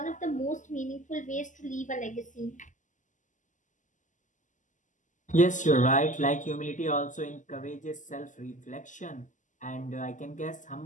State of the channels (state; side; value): late; right; 0.37 ms